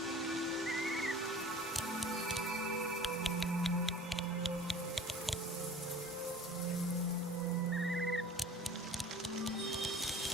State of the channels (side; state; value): both; normal; correlation 0.44